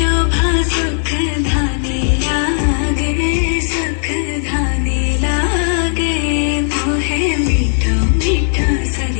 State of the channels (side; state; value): right; silent; digital silence